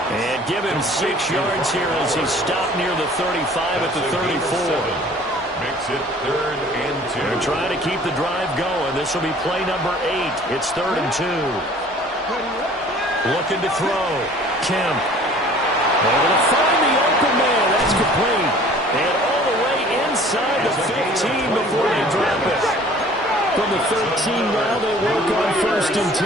And give him 6 yards here as he stopped near the 35 at the 34. Makes it 3rd and 2. They're trying to keep the drive going. This will be play number 8. It's 3rd and 2. Looking to throw. Kemp. Able to find the open man. That's complete. And all the way inside the 15 before they drop it. From the 13 now, they work on 1st and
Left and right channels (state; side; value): normal; both; correlation 0.50